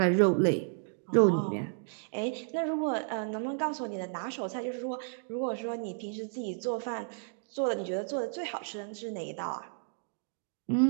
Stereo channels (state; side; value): silent; left; digital silence